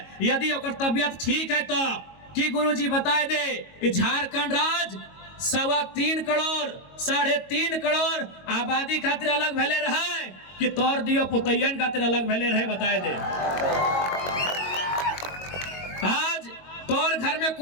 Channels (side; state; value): right; late; 22 ms